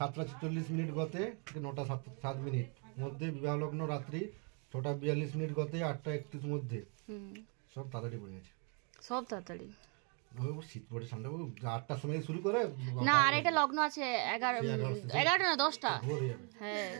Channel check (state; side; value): quieter; left; 37.2 dB